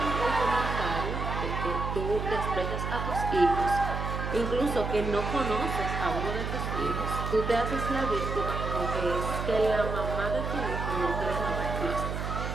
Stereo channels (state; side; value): noise; right; hum, 3 dB below the sound